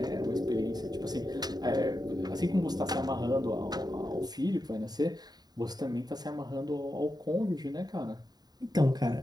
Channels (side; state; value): left; late; 0.19 ms